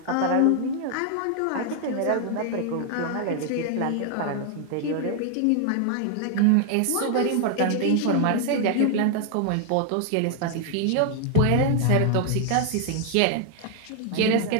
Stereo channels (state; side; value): different; both; correlation 0.00